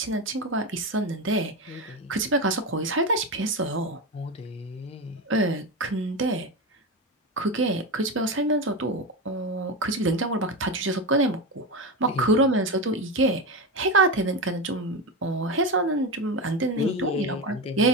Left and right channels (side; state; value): both; normal; correlation 0.17